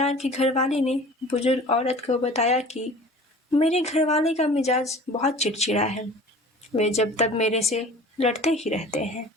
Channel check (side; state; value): both; normal; correlation 0.43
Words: की घरवाली ने बुजुर्ग औरत को बताया कि मेरे घरवाले का मिजाज बहुत चिड़चिड़ा है। वे जब तक मेरे से लड़ते ही रहते हैं।